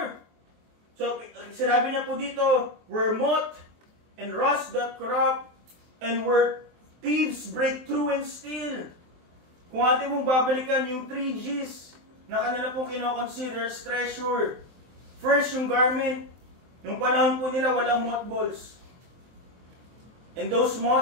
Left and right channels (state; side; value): late; left; 23 ms